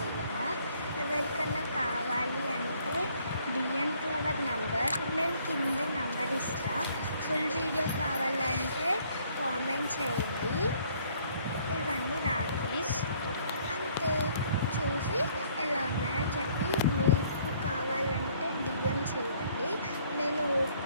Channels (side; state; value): both; inverted; correlation -0.62